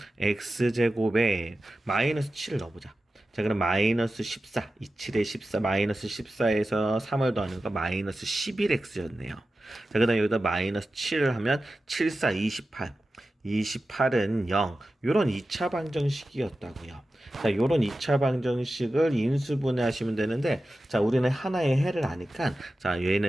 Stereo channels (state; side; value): normal; both; correlation 0.93